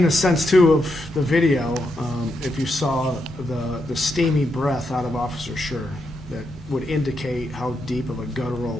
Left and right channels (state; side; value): normal; both; correlation 0.82